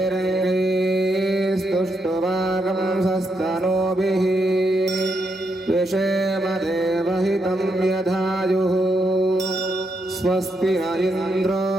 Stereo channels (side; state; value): both; normal; correlation 0.80